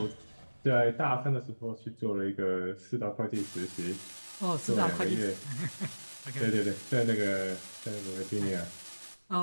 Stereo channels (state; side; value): inverted; both; correlation -1.00